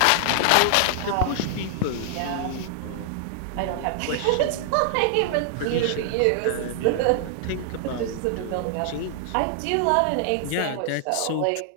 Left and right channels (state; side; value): different; both; correlation 0.00